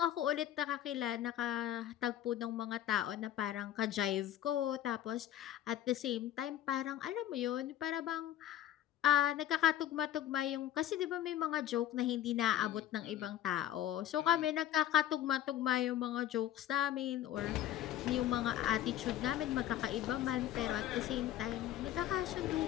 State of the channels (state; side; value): quieter; right; 12.2 dB